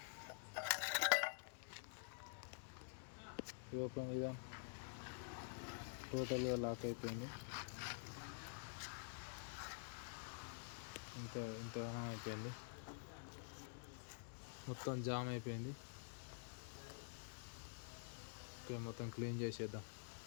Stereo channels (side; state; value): right; silent; digital silence